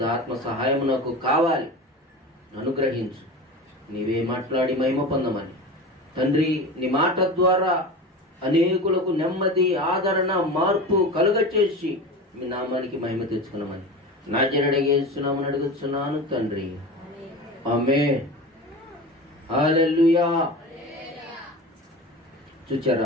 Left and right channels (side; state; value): both; normal; correlation 0.30